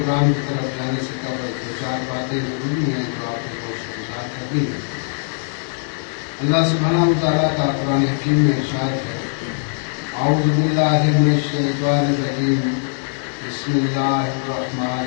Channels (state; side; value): silent; right; 65 dB below the other